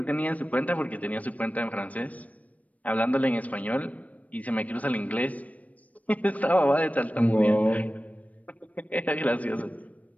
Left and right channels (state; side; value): late; right; 0.069 ms